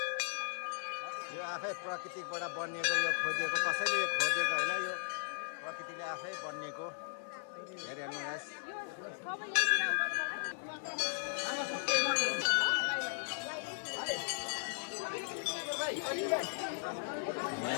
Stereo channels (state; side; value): silent; right; 53 dB below the other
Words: यो आफै प्रकृतिबाट बनिएको, यो खोदिएको, कसैले यो खोदिएको होइन, यो प्रकृतिले आफै बनिएको। हेरिहाल्नु गाइस।